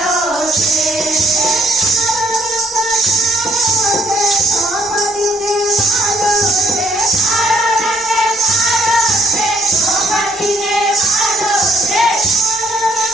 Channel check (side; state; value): both; normal; correlation 0.66